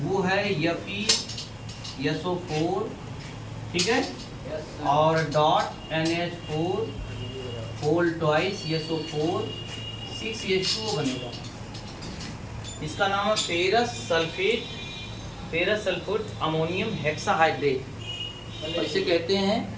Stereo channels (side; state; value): both; identical; correlation 1.00